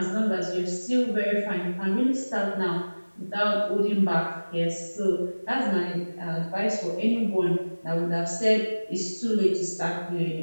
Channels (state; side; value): inverted; both; correlation -1.00